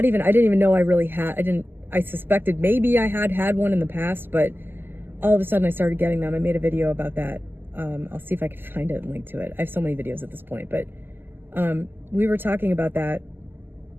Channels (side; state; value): left; late; 0.096 ms